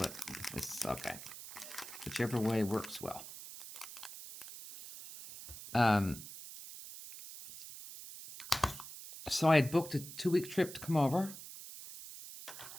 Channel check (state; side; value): noise; right; hiss, 12 dB below the sound